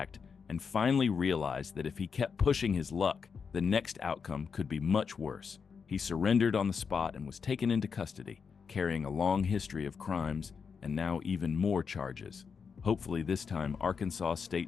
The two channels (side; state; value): right; quieter; 6.0 dB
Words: and finally realized that if he kept pushing his luck, the next outcome could be much worse. He surrendered on the spot and was taken into custody, carrying a long history of crimes and now even more charges. Hopefully this time, Arkansas